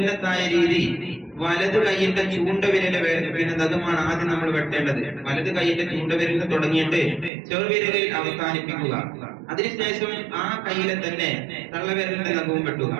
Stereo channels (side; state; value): left; drops out; at 7.3 s